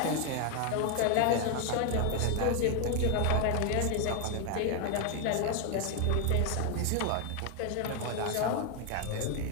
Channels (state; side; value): different; both; correlation 0.01